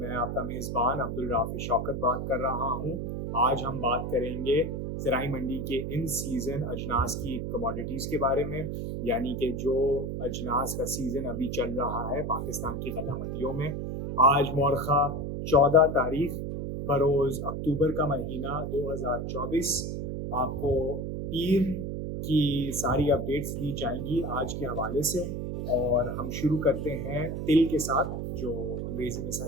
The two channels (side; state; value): right; noise; hum, 4 dB below the sound